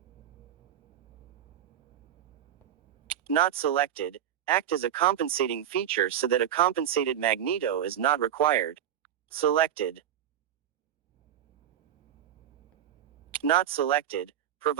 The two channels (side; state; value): left; quieter; 10.4 dB